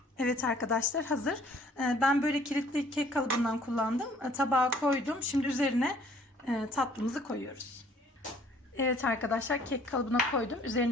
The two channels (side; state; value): both; normal; correlation 0.57